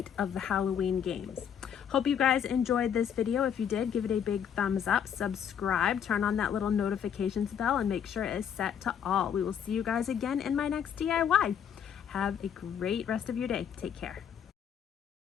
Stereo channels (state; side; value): quieter; right; 8.4 dB